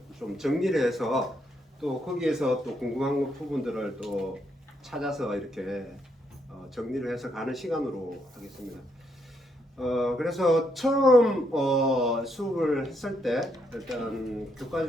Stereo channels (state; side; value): normal; both; correlation 0.76